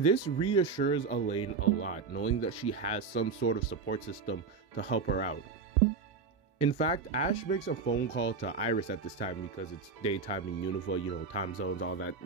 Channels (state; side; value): quieter; left; 5.0 dB